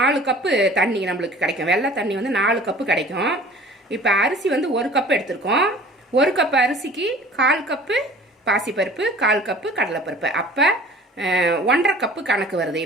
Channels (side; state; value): both; normal; correlation 0.46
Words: கப்பு தண்ணி நம்மளுக்கு கிடைக்கும். வெள்ளை தண்ணி 4 கப்பு கிடைக்கும். இப்போ அரிசி 1 கப்பு எடுத்திருக்கோம். 1 கப்பு அரிசிக்கு 1/4 கப்பு பாசிப்பருப்பு, 1/4 கப்பு கடலைப்பருப்பு. அப்போ 1.5 கப்பு கணக்கு வருது.